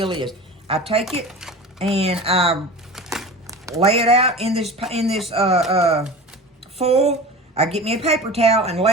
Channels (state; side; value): normal; both; correlation 0.34